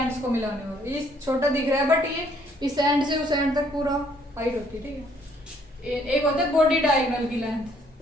को मिलाने वाला, ये छोटा दिख रहा है बट ये इस एंड से उस एंड तक पूरा हाइट होती है, ठीक है। एक होता है बॉडी डायगोनल की लेंथ,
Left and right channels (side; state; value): both; normal; correlation 0.65